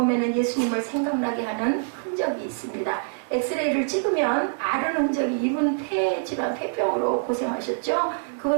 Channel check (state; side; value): silent; left; digital silence